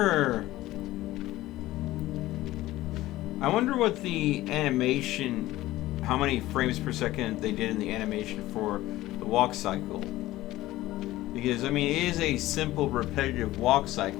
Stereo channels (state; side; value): quieter; right; 16.5 dB